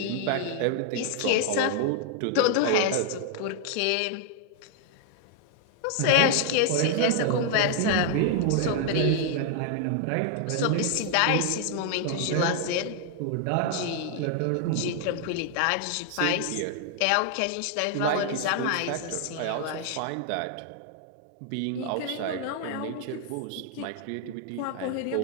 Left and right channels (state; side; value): different; both; correlation 0.00